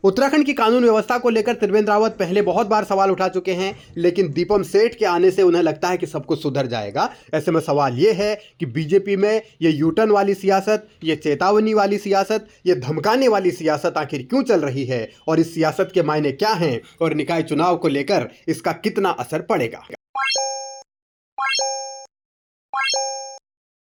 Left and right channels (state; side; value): identical; both; correlation 1.00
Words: उत्तराखंड की कानून व्यवस्था को लेकर त्रिवेंद्र रावत पहले बहुत बार सवाल उठा चुके हैं, लेकिन दीपम सेठ के आने से उन्हें लगता है कि सब कुछ सुधर जाएगा। ऐसे में सवाल ये है कि बीजेपी में ये यूटर्न वाली सियासत, ये चेतावनी वाली सियासत, ये धमकाने वाली सियासत आखिर क्यों चल रही है और इस सियासत के मायने क्या हैं और निकाय चुनाव को लेकर इसका कितना असर पड़ेगा।